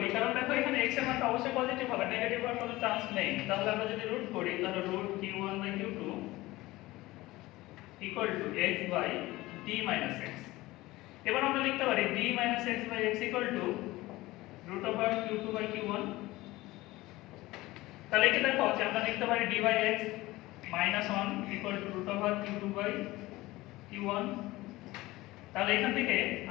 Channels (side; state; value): right; quieter; 18.9 dB